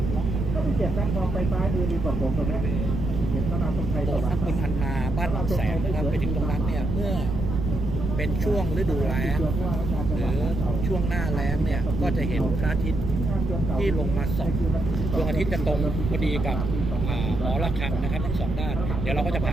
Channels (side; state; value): right; noise; rumble, 3 dB below the sound